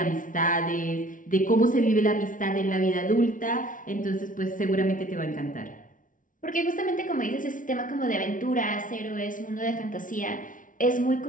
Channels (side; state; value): right; late; 0.38 ms